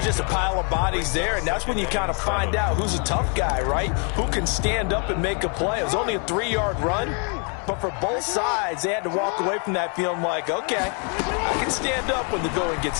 just a pile of bodies there, and that's when you kind of find out who's a tough guy, right? Who can stand up and make a play. It was only a 3-yard run, but for both sides, they had to walk away from that feeling like, okay, I can stand up when the going gets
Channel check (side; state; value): right; quieter; 38.5 dB